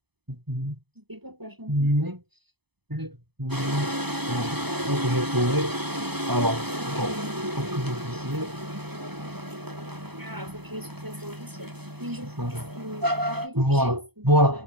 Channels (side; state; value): left; late; 0.98 ms